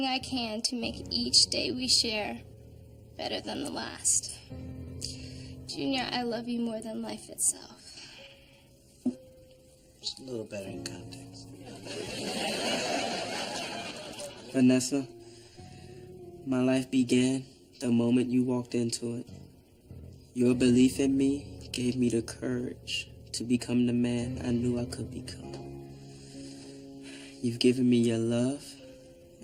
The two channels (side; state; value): both; identical; correlation 1.00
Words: I can to make each day we share better than the last. Junior, I love you more than life itself. Just a little better in context. Vanessa, my life began the moment you walked into it. Your belief in me gave me the courage to become the man I knew I could become. You've given me your love